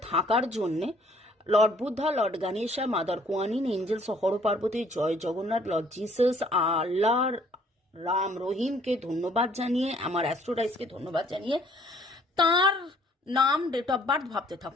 থাকার জন্যে lord Buddha, lord Ganesha, mother Kuanyin, angels, Har Parvati, জয় জগন্নাথ, লর্ড জিসাস, আল্লাহ, রাম রহিমকে ধন্যবাদ জানিয়ে, আমার অ্যাস্ট্রোডাইসকে ধন্যবাদ জানিয়ে তার নাম, ডেট অফ বার্থ ভাবতে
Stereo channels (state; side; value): normal; both; correlation 0.60